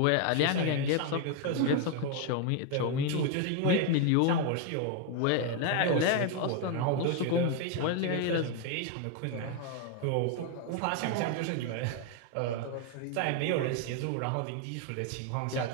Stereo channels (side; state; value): both; different; correlation 0.01